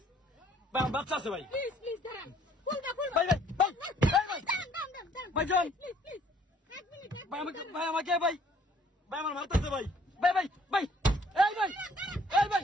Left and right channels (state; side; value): normal; both; correlation 0.60